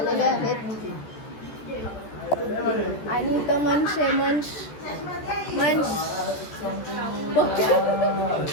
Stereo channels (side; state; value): right; late; 14 ms